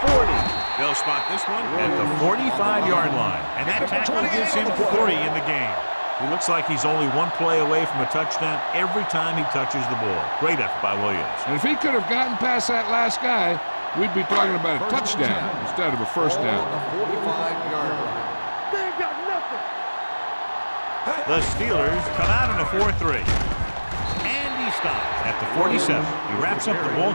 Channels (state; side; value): inverted; both; correlation -1.00